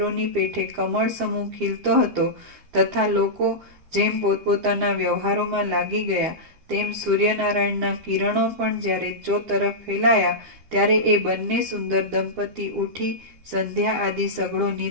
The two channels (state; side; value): late; left; 12 ms